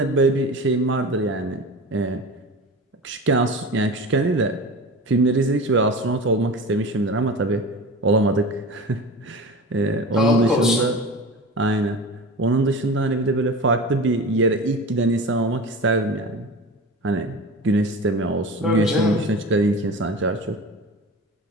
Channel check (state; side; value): normal; both; correlation 0.32